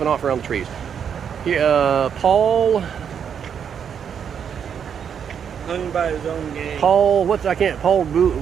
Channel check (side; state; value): left; quieter; 7.8 dB